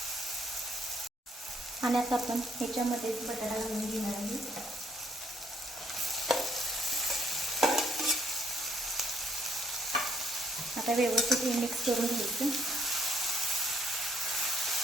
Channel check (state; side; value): normal; both; correlation 0.68